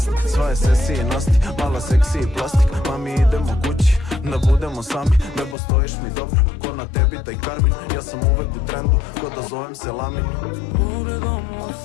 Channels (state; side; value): drops out; right; at 5.6 s